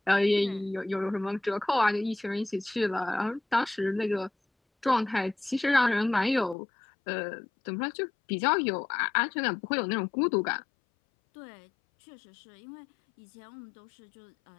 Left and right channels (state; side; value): drops out; right; at 6.6 s